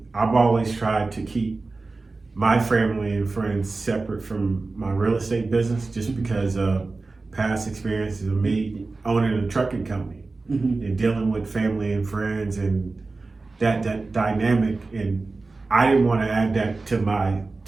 I've always tried to keep my family and friends separate from my real estate business, just because of past experiences of me owning a trucking company and dealing with family and friends and that dynamic. And I didn't want to add that to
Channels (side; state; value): left; quieter; 3.6 dB